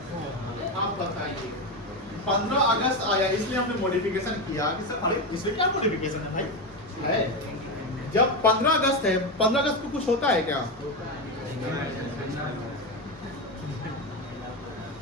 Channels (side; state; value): both; normal; correlation 0.14